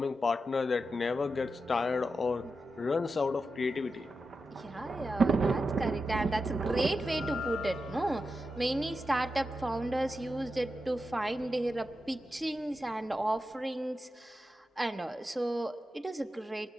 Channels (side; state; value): both; normal; correlation 0.89